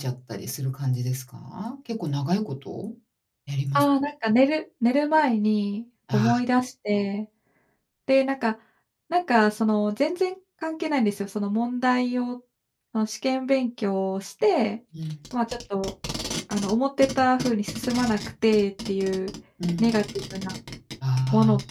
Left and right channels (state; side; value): identical; both; correlation 1.00